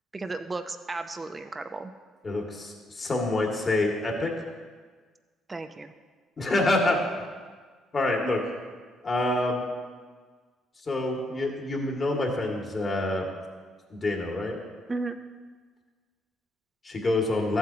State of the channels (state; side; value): normal; both; correlation 0.75